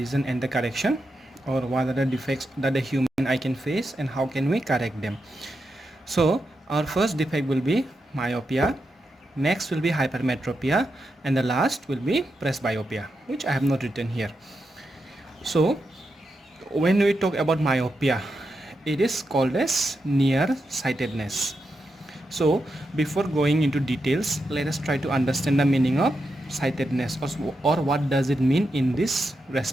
and the correction, or what are the defects that the human eye can face and how can we correct them. So our first defect will be myopia, next will be hypermetropia, and the last will be presbyopia, which I have not written here. So when we talk about myopia, it is called as nearsightedness. So before going into details, let us try to understand the meaning of sightedness, or what does it mean in this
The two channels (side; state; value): both; normal; correlation 0.86